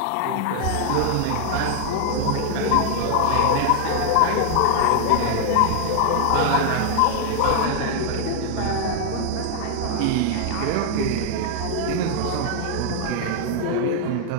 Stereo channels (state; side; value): different; both; correlation 0.00